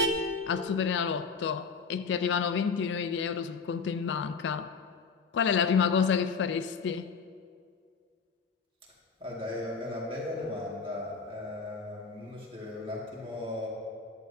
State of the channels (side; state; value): right; quieter; 5.2 dB